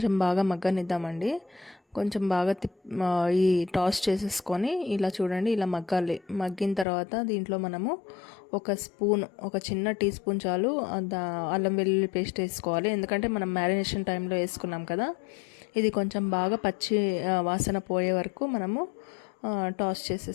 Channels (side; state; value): right; drops out; at 6.9 s